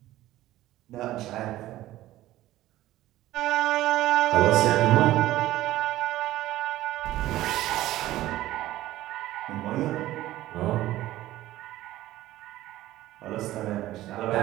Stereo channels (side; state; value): left; quieter; 15.3 dB